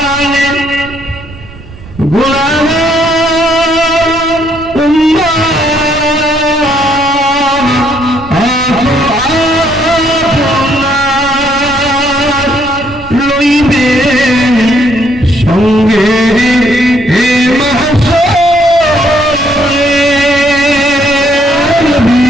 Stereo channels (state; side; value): noise; right; rumble, 17 dB below the sound